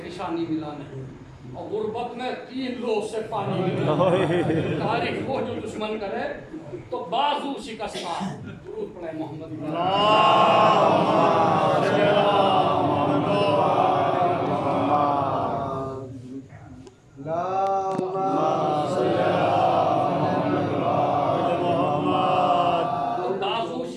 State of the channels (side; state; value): both; identical; correlation 1.00